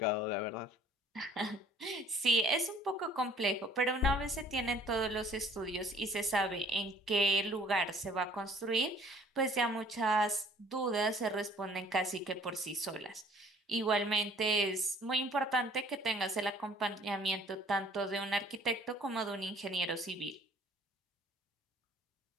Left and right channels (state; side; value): normal; both; correlation 0.55